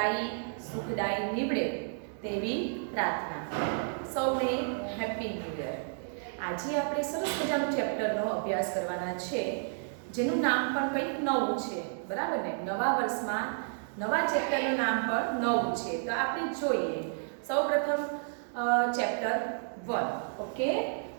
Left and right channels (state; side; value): silent; left; 57 dB below the other